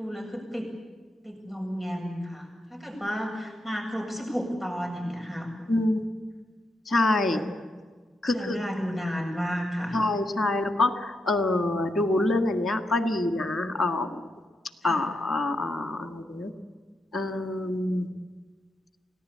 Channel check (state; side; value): normal; both; correlation 0.83